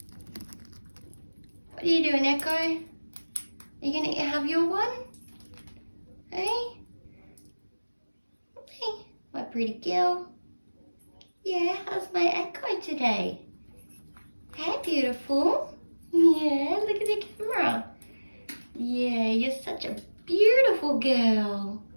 What are you doing, Echo? Are you gonna have your one? Hey? Hey, my pretty girl. Yeah, how's my Echo today? Hey, beautiful. Yeah, look at the camera. Yeah, you're such a beautiful girl.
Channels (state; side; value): inverted; both; correlation -1.00